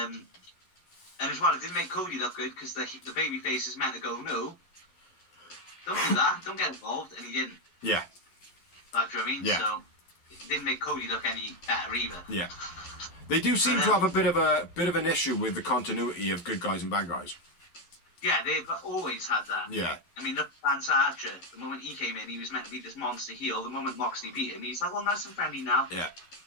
And as well, it didn't make Cody look good because the babyface is meant to go, no, don't do that, don't get involved, and he didn't. Yeah. Like, do you know what I mean? Yeah. So it didn't make Cody look any better either. Yeah. They do seem to have a bit of an issue with the continuity of good guys and bad guys. Yeah, they've always had that. Yeah. I mean, look at Lance Archer. The moment he came in, he was meant to be this monster heel. The moment Moxley beat him, he's like, oh, nice and friendly now. Yeah.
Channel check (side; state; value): right; late; 11 ms